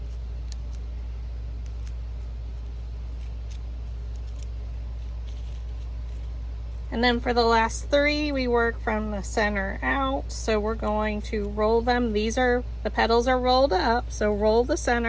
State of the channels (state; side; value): identical; both; correlation 1.00